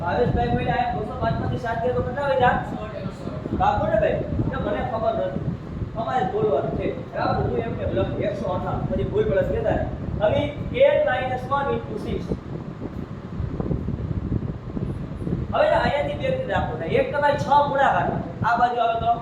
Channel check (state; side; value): identical; both; correlation 1.00